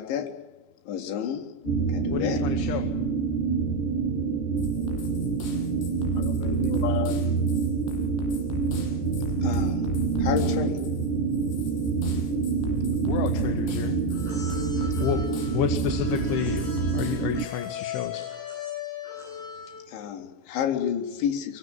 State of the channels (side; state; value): right; late; 15 ms